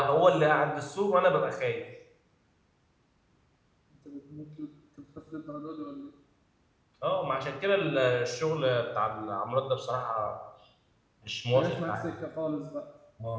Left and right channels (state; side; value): identical; both; correlation 1.00